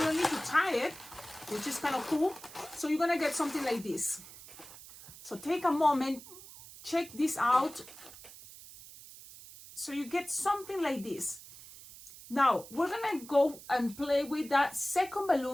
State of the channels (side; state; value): right; noise; hiss, 17 dB below the sound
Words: need to tie it, which is kind of cool. So you're gonna get something like this. So take a moment, check this out. So you get something like this. Now we're gonna go and play with that second